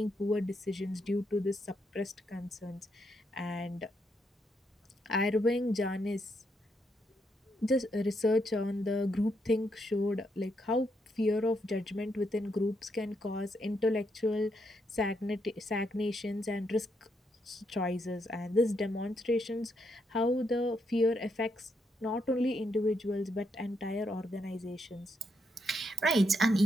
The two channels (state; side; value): normal; both; correlation 0.78